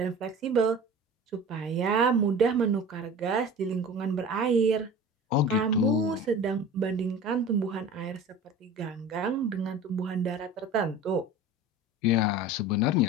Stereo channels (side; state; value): both; normal; correlation 0.38